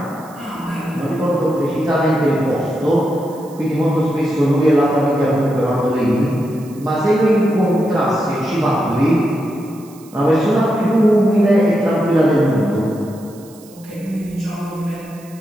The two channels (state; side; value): noise; right; hiss, 25 dB below the sound